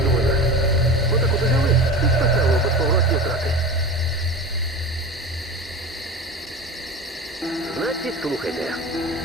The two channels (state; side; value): normal; both; correlation 0.31